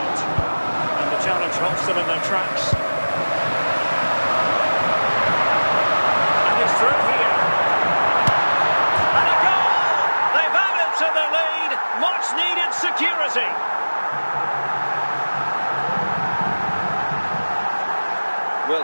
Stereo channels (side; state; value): both; inverted; correlation -1.00